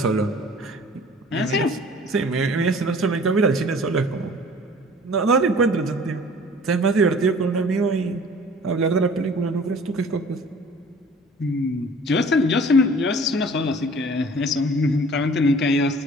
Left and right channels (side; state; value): both; normal; correlation 0.48